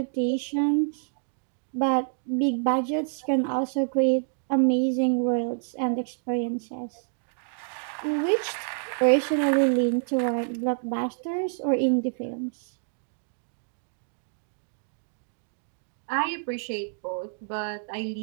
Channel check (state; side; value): silent; left; digital silence